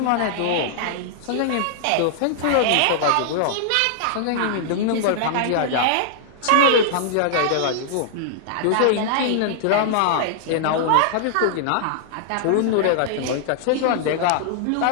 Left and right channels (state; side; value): different; both; correlation -0.01